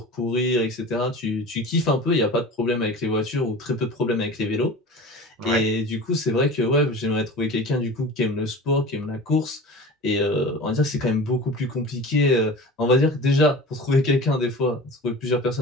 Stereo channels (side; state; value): both; normal; correlation 0.36